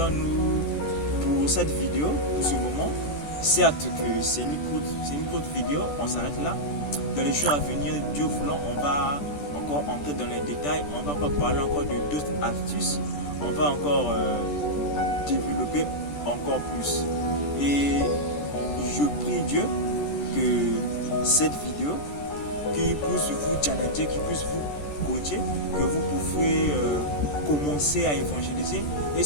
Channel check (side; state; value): right; late; 14 ms